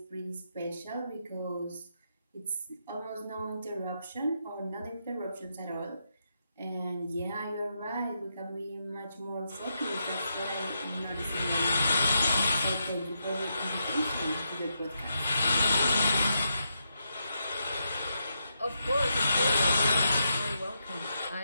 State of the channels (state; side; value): inverted; both; correlation -0.83